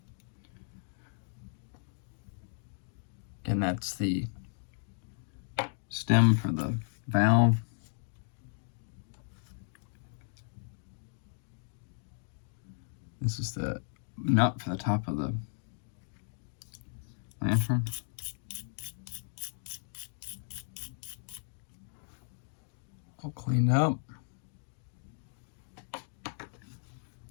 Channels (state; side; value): silent; right; digital silence